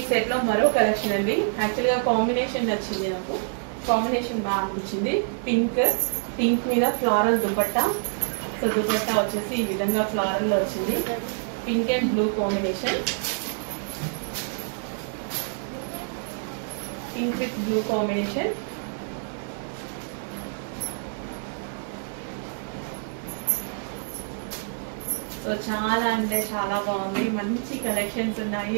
సెట్ లో మరో కలెక్షన్ అండి. యాక్చువల్ గా కాంబినేషన్ నచ్చింది నాకు, కాంబినేషన్ బాగా అనిపించింది. పింక్ మీద ఫ్లారల్ దుపట్టా. సో దుపట్టా వచ్చేసి ఈ విధంగా ఫ్లారల్ లో వచ్చింది. Pink and blue combination, pink with blue combination. So చాలా అంటే చాలా బాగుంది, మంచి కలెక్షన్స్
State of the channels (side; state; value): left; silent; digital silence